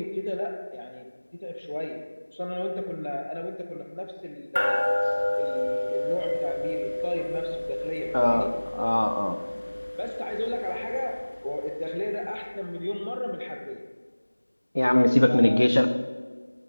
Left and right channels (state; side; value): inverted; both; correlation -1.00